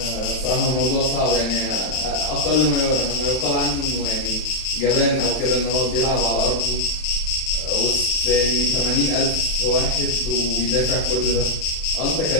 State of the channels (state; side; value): late; right; 31 ms